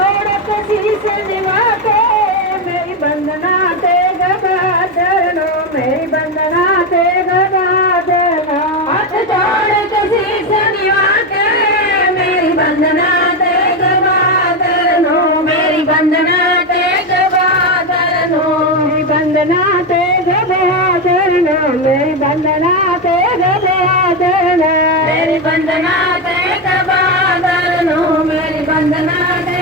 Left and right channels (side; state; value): both; normal; correlation 0.10